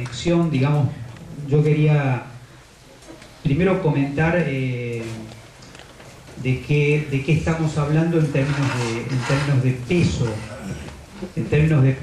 digamos, yo quería primero comentar de qué estamos hablando en términos de peso. En términos de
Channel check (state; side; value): identical; both; correlation 1.00